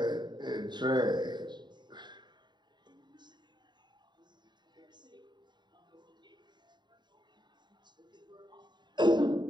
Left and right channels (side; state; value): left; late; 0.21 ms